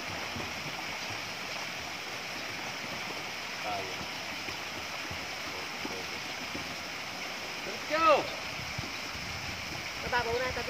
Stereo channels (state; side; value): identical; both; correlation 1.00